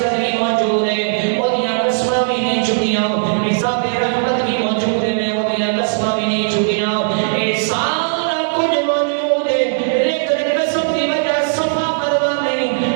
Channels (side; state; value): left; silent; 63 dB below the other